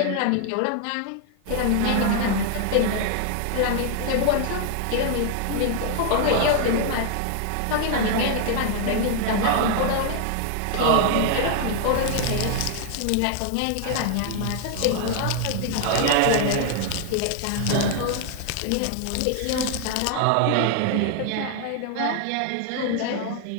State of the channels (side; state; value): both; different; correlation 0.00